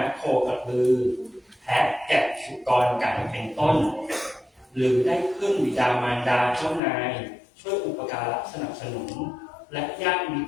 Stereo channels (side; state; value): right; drops out; at 6.8 s